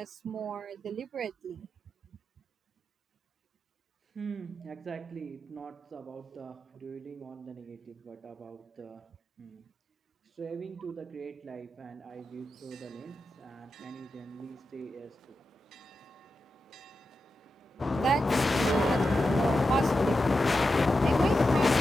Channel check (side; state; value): both; normal; correlation 0.90